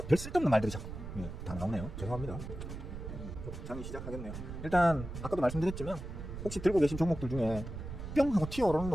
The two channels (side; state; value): right; noise; rumble, 9 dB below the sound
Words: 별 쓸데없는 말들이 자꾸 다 나오네요. 죄송합니다. 장이 시작하겠네요. 일단 아까도 말씀드렸지만, 혹시 들고 계신 종목들 중에 뿅 하고 튀어오르는